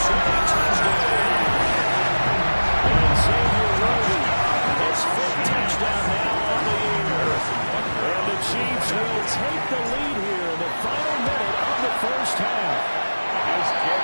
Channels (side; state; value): both; inverted; correlation -1.00